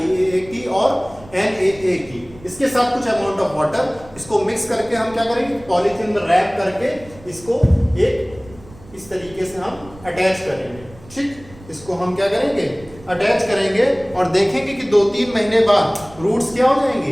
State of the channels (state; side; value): noise; right; rumble, 21 dB below the sound